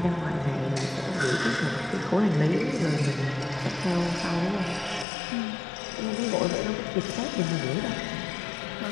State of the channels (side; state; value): right; drops out; at 5.1 s